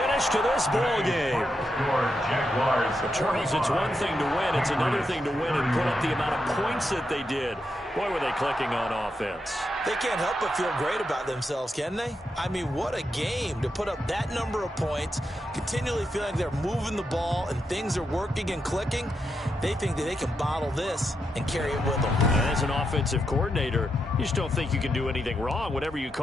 to this ball game. But Charles, it's one thing to win. It's another thing to win and put up the amount of points that they did. Boy, were they clicking on offense. They can't help but feel great about themselves, can they? I mean, what a game to put up that number of points, continually feel like they're moving the ball and things are working and clicking. They think that they can bottle this and carry it with them. As an offensive coordinator, you just don't think you can do anything wrong. Whatever you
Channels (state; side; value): normal; both; correlation 0.84